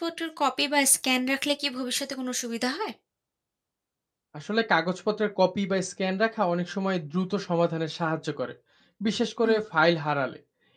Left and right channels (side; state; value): both; identical; correlation 1.00